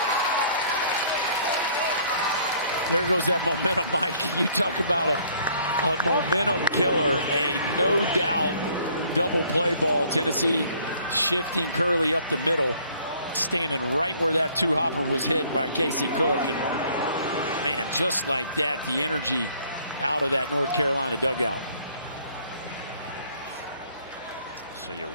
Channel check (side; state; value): both; inverted; correlation -0.59